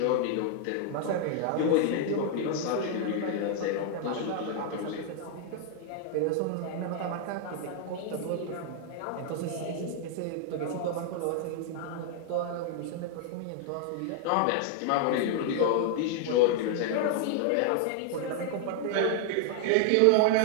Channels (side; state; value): both; different; correlation 0.00